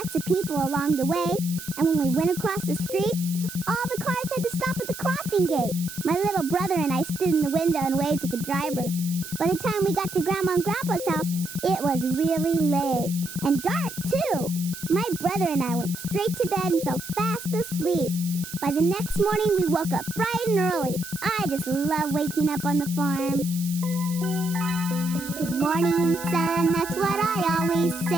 of people along the way, and when we went across the street, all the cars had to stop at the crossing gate. My little brother and I stood in the window and waved to the drivers. By the time we got to Grandma and Grandpa's house, it was really late. And dark, too. My brother and I went straight to bed and fell fast asleep. By the next morning, we woke up bright and early. I just love waking up on the farm. Good morning, sun, that's what I always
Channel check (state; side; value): noise; right; hiss, 12 dB below the sound